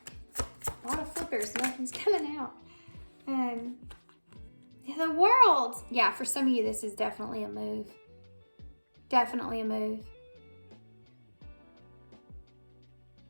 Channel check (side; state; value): both; inverted; correlation -1.00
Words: A lot of flippers, nothing's coming out. The World. Yeah, for some of you, this is definitely a move. Definitely a move.